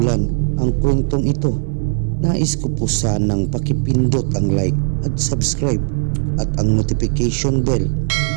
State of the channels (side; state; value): left; silent; 67 dB below the other